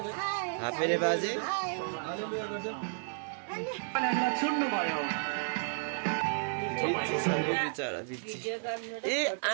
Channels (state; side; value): silent; left; digital silence